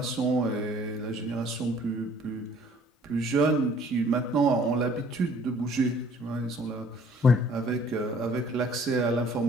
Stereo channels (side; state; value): both; normal; correlation 0.56